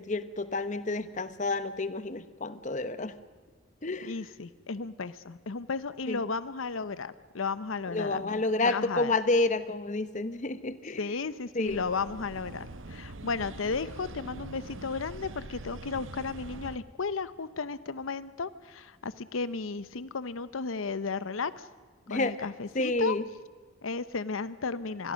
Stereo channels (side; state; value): right; quieter; 3.0 dB